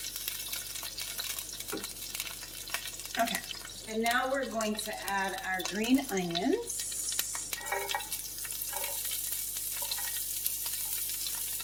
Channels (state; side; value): noise; left; hum, 18 dB below the sound